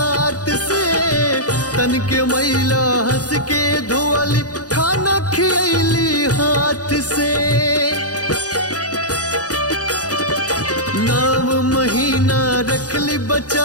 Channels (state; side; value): late; right; 0.68 ms